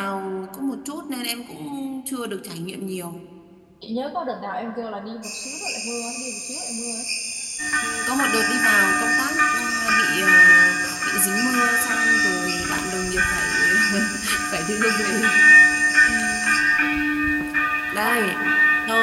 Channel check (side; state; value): both; identical; correlation 1.00